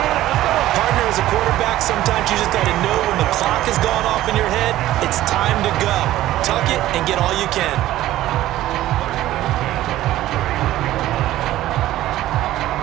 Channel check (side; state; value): left; quieter; 14.7 dB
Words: Partner, as a quarterback, sometimes you just got to know when the clock has gone off in your head, it's time to go. Tuck it and get all you can.